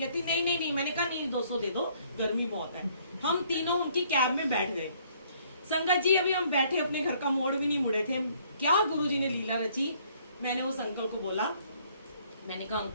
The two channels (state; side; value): inverted; both; correlation -0.63